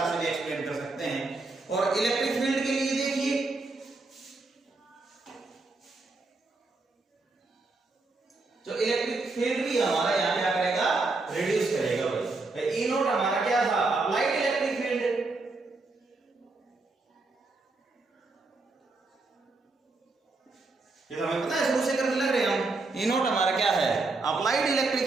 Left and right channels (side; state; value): left; quieter; 3.5 dB